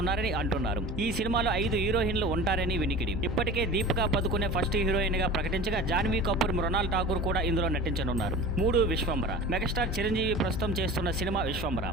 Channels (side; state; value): both; normal; correlation 0.37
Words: అంటున్నారు. ఈ సినిమాలో 5 హీరోయిన్లు ఉంటారని వినికిడి. ఇప్పటికే దీపికా పదుకునే ఫస్ట్ హీరోయిన్ గా ప్రకటించగా జాన్వీ కపూర్, మృణాల్ ఠాకూర్ కూడా ఇందులో నటించనున్నారు. 3 విశ్వంబర. మెగాస్టార్ చిరంజీవి ప్రస్తుతం చేస్తున్న సినిమా విశ్వంబర.